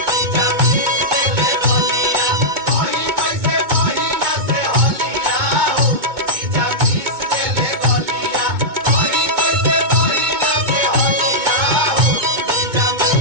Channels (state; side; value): late; left; 2.2 ms